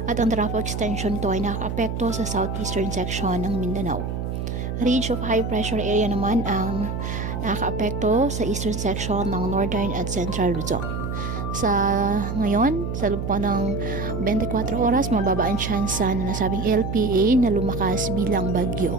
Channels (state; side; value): noise; right; hum, 3 dB below the sound